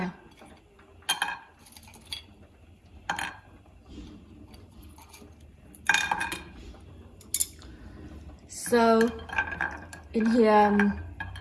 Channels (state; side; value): identical; both; correlation 1.00